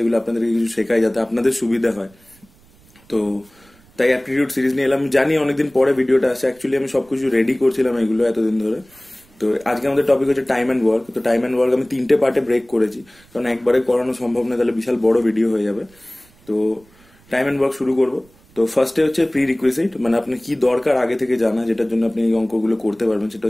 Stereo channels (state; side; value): noise; right; rumble, 29 dB below the sound